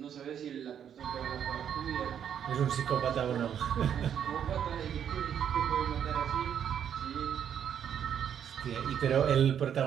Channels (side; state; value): left; quieter; 8.8 dB